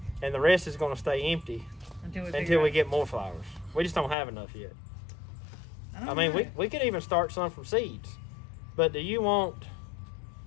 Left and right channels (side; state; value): right; drops out; at 4.2 s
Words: And the rest is going to stay empty until we get more flowers. We just don't have enough yet. I mean, we could even start some from seeds. But do you want